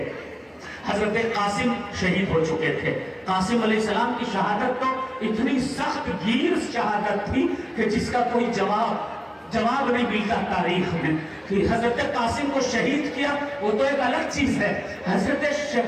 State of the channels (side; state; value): both; identical; correlation 1.00